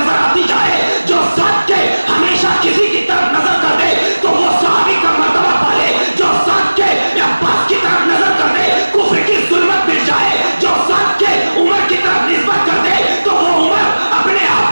آتی جائے، جو ذات کے ہمیشہ کسی کی طرف نظر کر دے تو وہ صحابی کا مرتبہ پالے، جو ذات کے عباس کی طرف نظر کر دے کفر کی ظلمت مٹ جائے، جو ذات کے عمر کی طرف نسبت کر دے تو وہ عمر اپنے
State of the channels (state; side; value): inverted; both; correlation -1.00